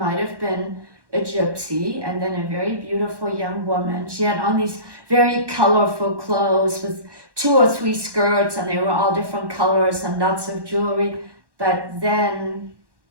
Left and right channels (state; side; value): late; left; 1.1 ms